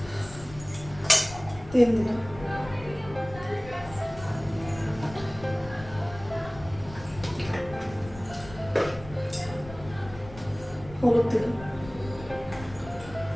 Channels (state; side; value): noise; left; rumble, 15 dB below the sound